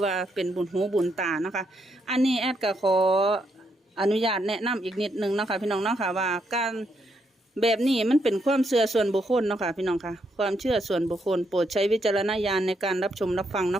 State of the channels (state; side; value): normal; both; correlation 0.78